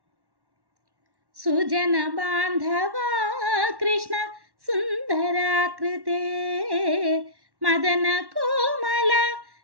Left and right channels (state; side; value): late; left; 1.1 ms